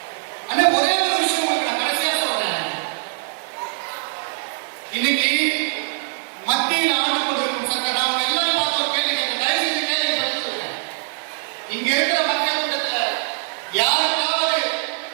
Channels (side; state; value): left; silent; 56 dB below the other